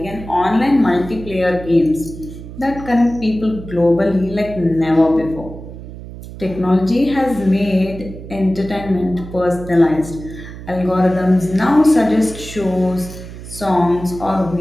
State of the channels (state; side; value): noise; right; hum, 13 dB below the sound